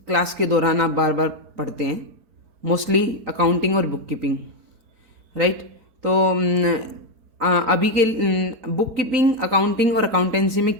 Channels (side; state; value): left; late; 4.4 ms